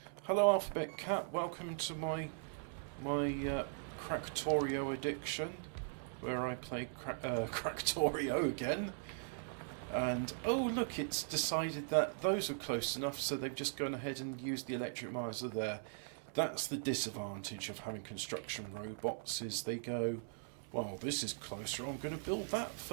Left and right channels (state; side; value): silent; left; 51 dB below the other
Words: Hello Alphabet Cat, welcome to my Factorio addiction, where I play Factorio again. And oh look, it's decided that those are close enough, so they've just gone ahead and used the electric miser there. That's the disadvantage of having construction robots, is they go, well, this is closer, I'm going to build that